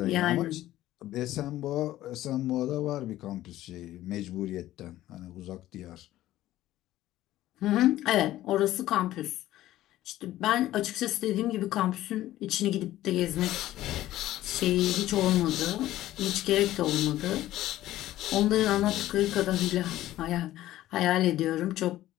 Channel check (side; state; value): right; quieter; 14.6 dB